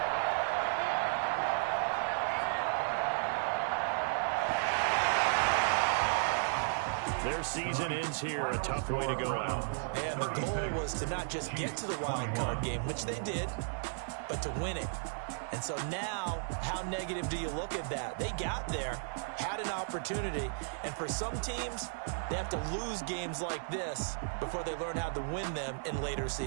Their season ends here. A tough way to go out. And the goal was to not just get to the wild card game, which they did, but to win it. And so now, how negative do you look at that? They got there, had an opportunity, and for some teams, they have to lose games like this before they learn how to win them in later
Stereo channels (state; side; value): silent; left; 55 dB below the other